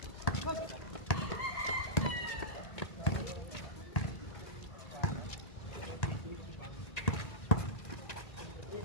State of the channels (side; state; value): right; late; 1.8 ms